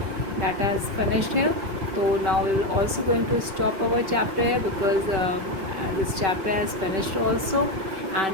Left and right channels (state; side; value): late; left; 5.2 ms